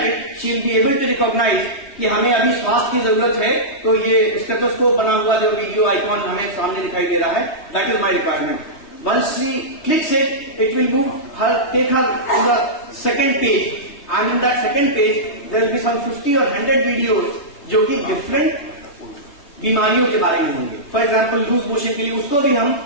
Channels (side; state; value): right; late; 3.3 ms